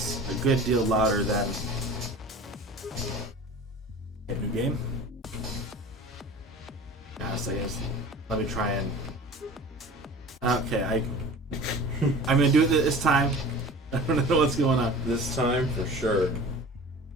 a good deal louder than a new game. So I guess let me try and. Okay, I'm going to do it this time. I don't know what's going on. This time for sure.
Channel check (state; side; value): normal; both; correlation 0.40